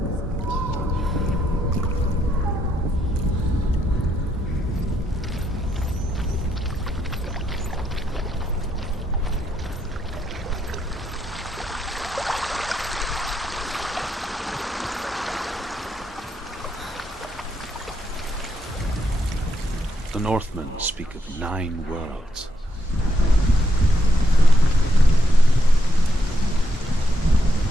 The Northmen speak of 9 worlds.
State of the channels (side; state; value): both; normal; correlation 0.79